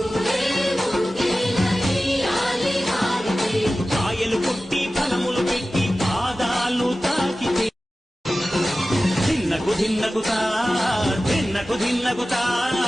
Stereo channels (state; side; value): normal; both; correlation 0.96